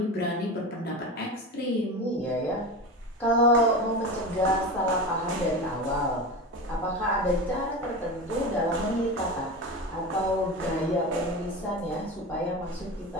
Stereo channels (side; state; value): both; normal; correlation 0.26